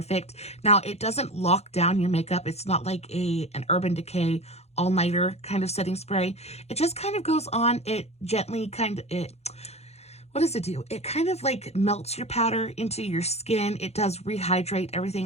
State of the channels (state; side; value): late; right; 0.31 ms